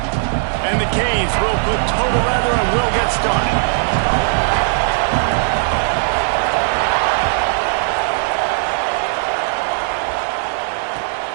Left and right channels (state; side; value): silent; left; digital silence